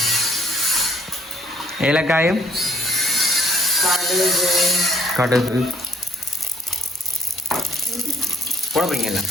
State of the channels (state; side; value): normal; both; correlation 0.65